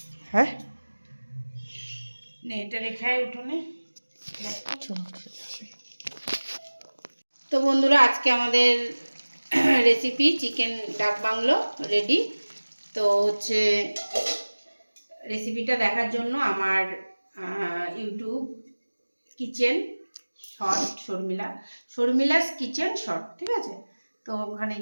है। নে এটা রেখে উঠোনে। चलो ठीक है। তো বন্ধুরা আজকে আমাদের recipe chicken dak bungalow ready. তো হচ্ছে রেসিপিটা দেখার জন্য আমার YouTube kitchen short Sharmila's kitchen short, ঠিক আছে? তো ওখানে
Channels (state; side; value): inverted; both; correlation -1.00